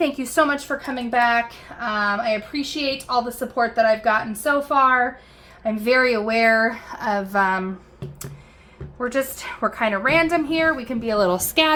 you so much for coming back. I appreciate all the support that I've gotten so far. I'm very aware of, we're kind of random here. We can be a little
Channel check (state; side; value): identical; both; correlation 1.00